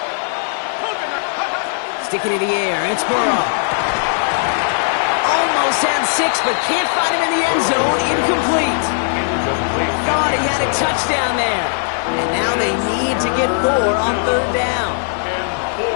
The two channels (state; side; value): silent; right; 67 dB below the other